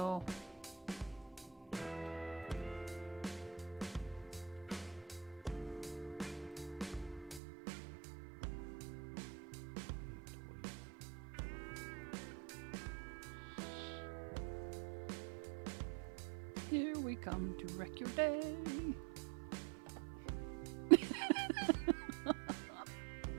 Here we come to wreck your day.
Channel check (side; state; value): left; drops out; at 7.4 s